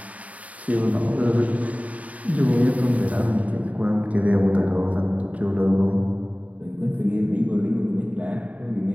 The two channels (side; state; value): left; late; 0.069 ms